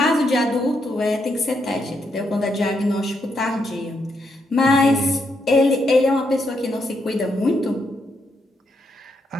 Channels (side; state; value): both; normal; correlation 0.79